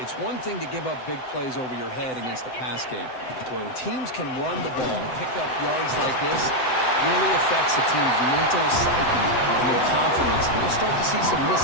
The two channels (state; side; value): late; right; 7.8 ms